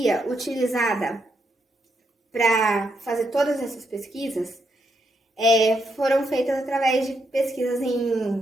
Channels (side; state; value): both; normal; correlation 0.79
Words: utilizada para fazer todas essas pesquisas foram feitas através de pesquisas